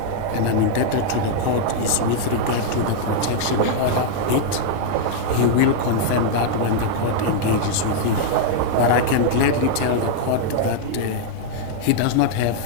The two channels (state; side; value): different; both; correlation -0.01